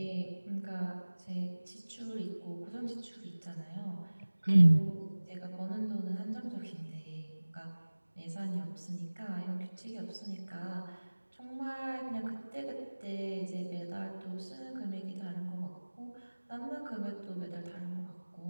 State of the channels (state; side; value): inverted; both; correlation -1.00